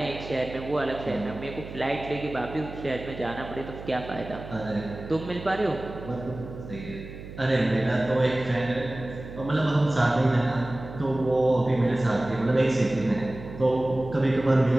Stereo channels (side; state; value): right; noise; hum, 13 dB below the sound